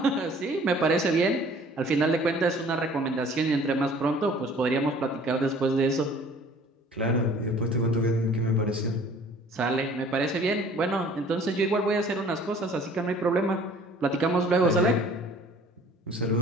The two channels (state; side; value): normal; both; correlation 0.52